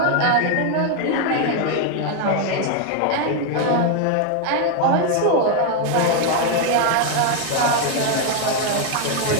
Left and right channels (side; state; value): both; different; correlation 0.01